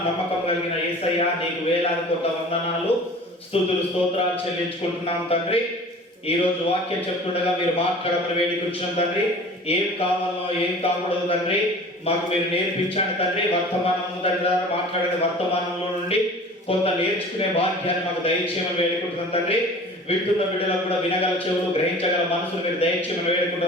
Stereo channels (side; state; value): both; normal; correlation 0.43